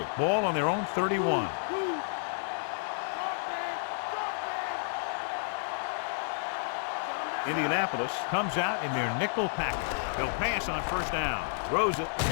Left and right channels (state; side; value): silent; right; 57 dB below the other